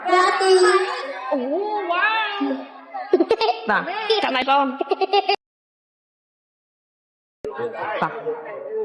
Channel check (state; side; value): identical; both; correlation 1.00